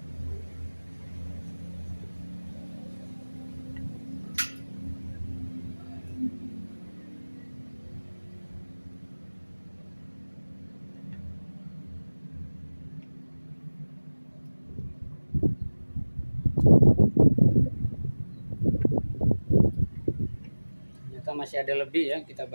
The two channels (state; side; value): inverted; both; correlation -1.00